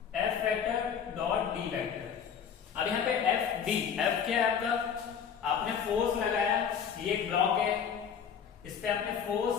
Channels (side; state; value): right; quieter; 7.5 dB